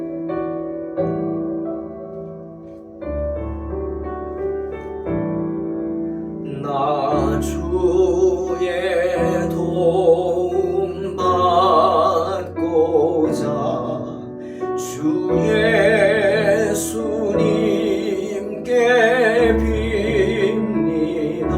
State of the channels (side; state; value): both; identical; correlation 1.00